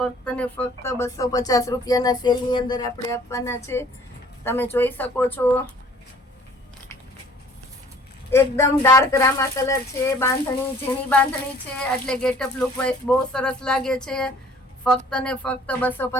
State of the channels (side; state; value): both; normal; correlation 0.54